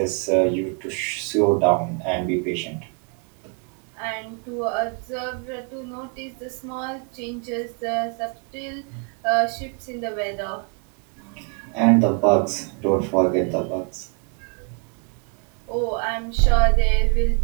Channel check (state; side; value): quieter; left; 37.2 dB